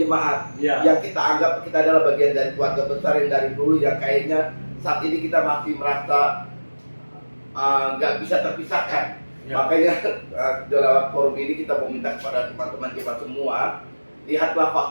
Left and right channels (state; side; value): inverted; both; correlation -1.00